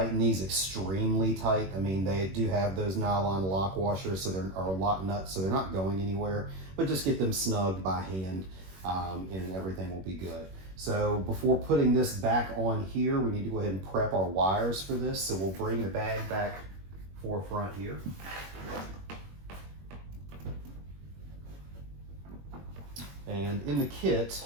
these extremely tight. I mean, they do have those nylon lock washers, so or lock nuts, so they're not going anywhere, but just get them snugged by hand, and everything will be good. So before putting this back on here, we need to go ahead and prep our wires for this. So we'll bring the bag back forefront here. And in the kit,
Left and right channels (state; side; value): late; left; 21 ms